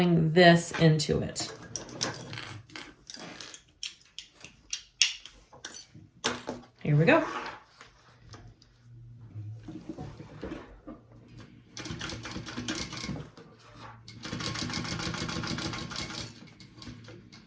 this into it. Here we go.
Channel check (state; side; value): identical; both; correlation 1.00